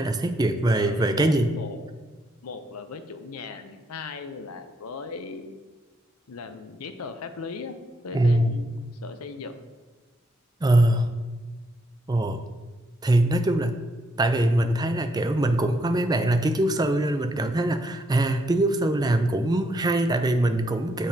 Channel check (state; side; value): normal; both; correlation 0.76